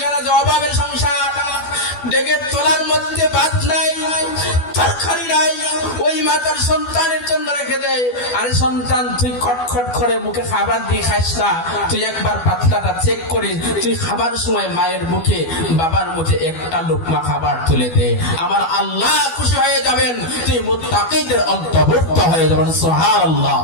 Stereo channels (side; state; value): right; late; 12 ms